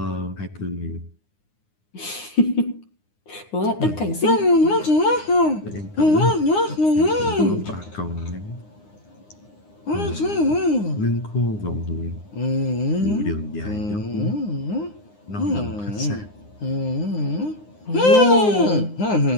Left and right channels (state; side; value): late; right; 9.7 ms